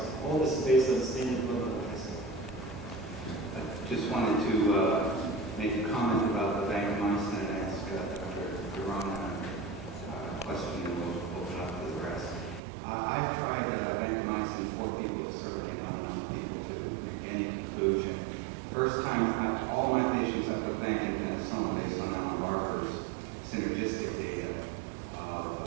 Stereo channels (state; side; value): drops out; left; at 12.6 s